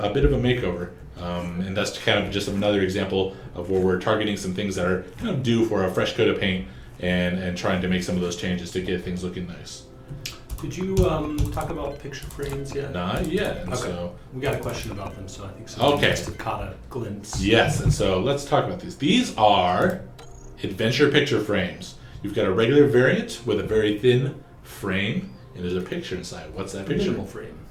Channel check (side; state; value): both; identical; correlation 1.00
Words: bit of a makeover. And that's kind of just another example of where we're targeting some things that are kind of due for a fresh coat of paint and trying to make some of those changes to get things looking nice. Did you talk about picture frames yet? Not yet. And Okay. so We got a question about them, so I think someone Okay. must have caught a glimpse. yes, and so let's talk about these. These are adventure picture frames. You've got a regular variant with a very thin frame, and there's a picture inside. What's that picture? Minimal frame.